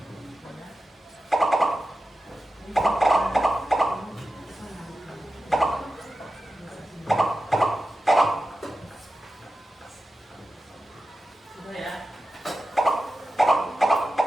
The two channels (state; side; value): normal; both; correlation 0.92